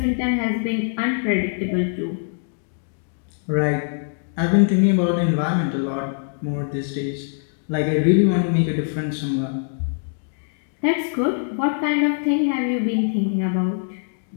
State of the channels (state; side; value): silent; right; digital silence